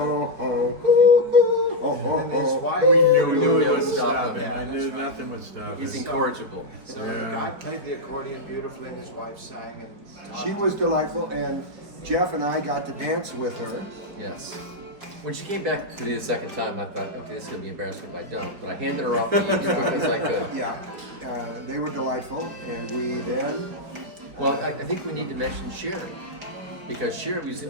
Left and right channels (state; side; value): late; left; 4.8 ms